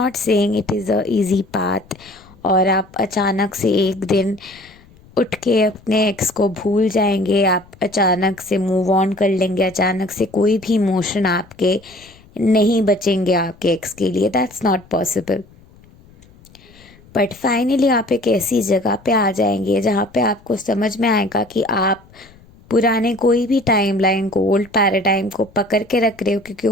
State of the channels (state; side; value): noise; left; rumble, 26 dB below the sound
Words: saying it is a easy path और आप अचानक से एक दिन उठ के अपने एक्स को भूल जाएंगे, आप अचानक से मूव ऑन कर लेंगे, अचानक से कोई भी इमोशन आपके नहीं बचेंगे आपके एक्स के लिए। That's not possible. But finally आप एक ऐसी जगह पे आ जाएंगे जहाँ पे आपको समझ में आएगा कि आप पुराने कोई भी टाइमलाइन को, ओल्ड पैराडाइम को पकड़ के रख रहे हो, क्योंकि